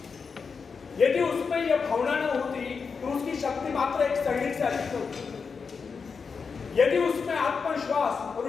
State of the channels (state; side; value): quieter; right; 5.4 dB